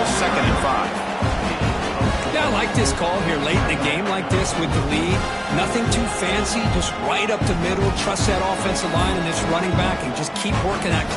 2nd and 5. Yeah, I like this call here late in the game like this with the lead. Nothing too fancy, just right up the middle. Trust that offensive line and this running back and just keep working that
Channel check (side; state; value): both; identical; correlation 1.00